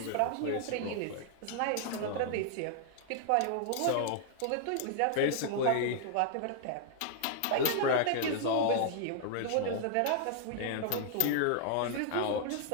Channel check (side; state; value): both; different; correlation -0.01